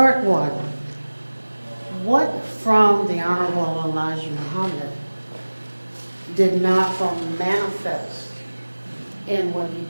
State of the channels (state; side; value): inverted; both; correlation -1.00